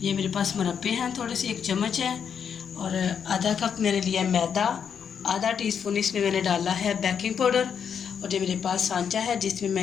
ये मेरे पास मुरब्बे हैं थोड़े से, 1 चम्मच है और आधा कप मैंने लिया मैदा, आधा टीस्पून इसमें मैंने डाला है बेकिंग पाउडर और ये मेरे पास सांचा है जिसमें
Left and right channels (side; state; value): right; quieter; 7.4 dB